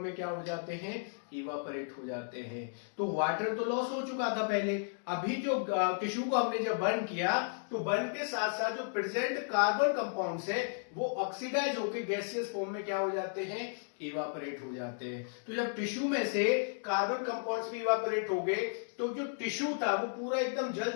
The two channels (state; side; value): silent; right; digital silence